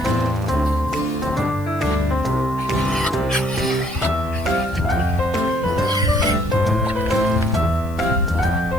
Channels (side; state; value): left; noise; hiss, 24 dB below the sound